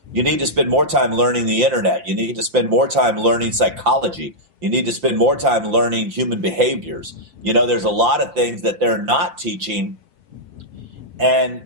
You need to spend more time learning the internet. You need to spend more time learning psychology. You need to spend more time learning human behaviors. There's a lot of things that they're not teaching. And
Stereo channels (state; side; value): late; left; 5.8 ms